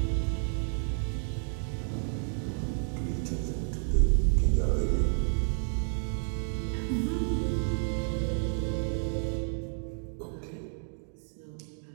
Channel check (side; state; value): left; silent; 57 dB below the other